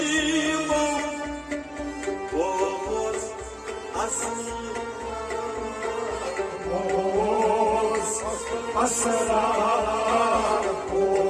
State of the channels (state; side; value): identical; both; correlation 1.00